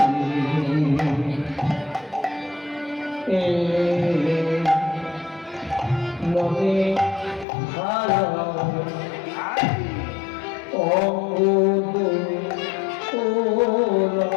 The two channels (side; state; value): right; drops out; at 7.5 s